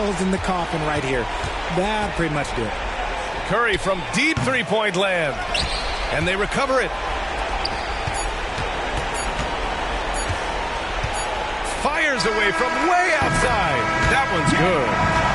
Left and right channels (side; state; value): both; identical; correlation 1.00